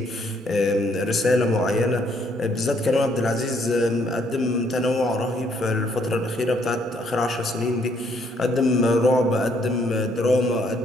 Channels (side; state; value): both; normal; correlation 0.69